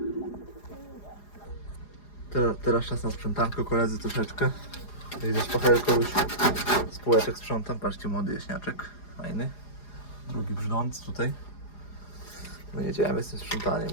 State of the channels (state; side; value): late; right; 4.9 ms